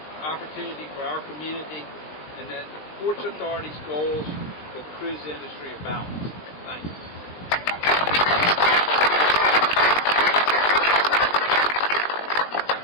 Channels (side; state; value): right; late; 20 ms